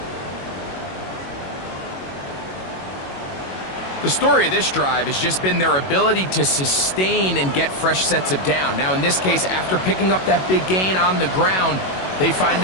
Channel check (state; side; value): late; right; 21 ms